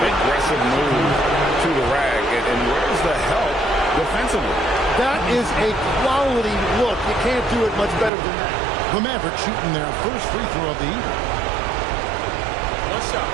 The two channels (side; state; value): left; drops out; at 8.1 s